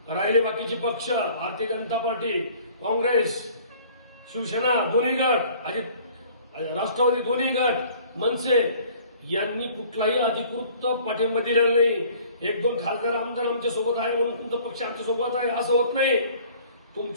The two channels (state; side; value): inverted; both; correlation -0.52